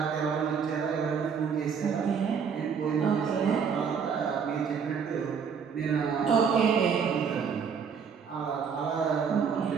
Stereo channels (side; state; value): left; quieter; 6.5 dB